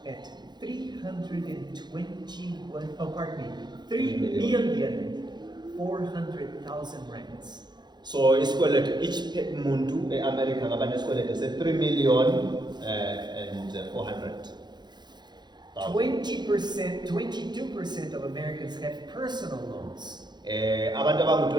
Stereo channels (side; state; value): left; late; 0.21 ms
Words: at 321, oh pardon me, 3,400,000 rands. So isikweletu each muntu eAmerica ngaba nesikweletu se3 million and 400,000. 20%, 22% of Americans have personal loans. Abantu